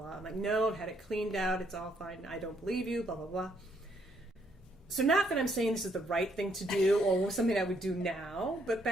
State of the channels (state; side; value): normal; both; correlation 0.71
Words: I'm like, "No, I've had it cleaned out. It's all fine. I don't believe you, blah, blah, blah." So not that I'm saying this is the right thing to do or something I would do now, but